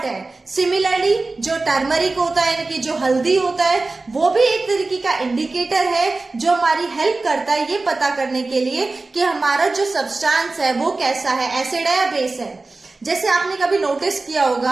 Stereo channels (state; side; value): quieter; left; 3.4 dB